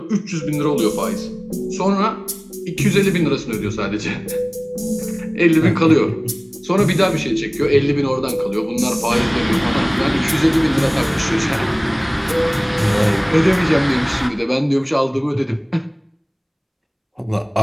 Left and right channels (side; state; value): both; identical; correlation 1.00